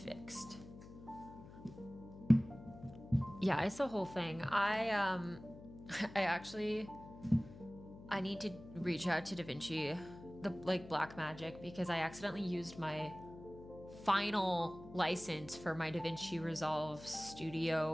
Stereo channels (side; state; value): left; noise; hum, 16 dB below the sound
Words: Fixed. Yeah, it's the whole thing. I need to reach out to DaVinci, the Black Magic, because I accidentally used my final license for my DaVinci Resolve